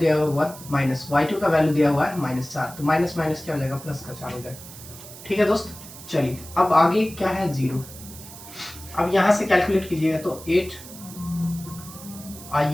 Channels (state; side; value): noise; right; hiss, 16 dB below the sound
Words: हुआ है 1 माइनस y2 का वैल्यू दिया हुआ है -4। तो माइनस माइनस क्या हो जाएगा, प्लस का 4 हो जाएगा, ठीक है दोस्त। चलिए, अब आगे क्या है, 0। अब यहाँ से कैलकुलेट कीजिएगा तो 8,